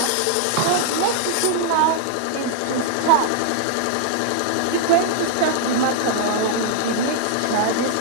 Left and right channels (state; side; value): different; both; correlation -0.01